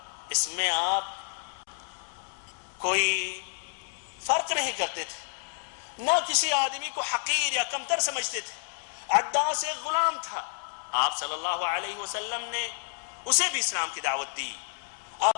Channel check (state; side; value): silent; right; 58 dB below the other